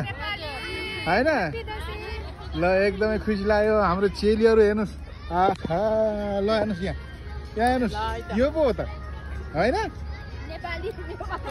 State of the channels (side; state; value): both; identical; correlation 1.00